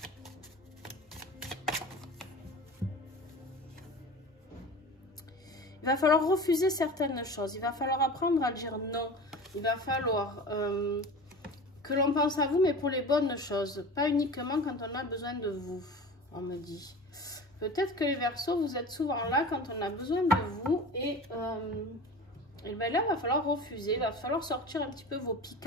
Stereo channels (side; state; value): both; normal; correlation 0.35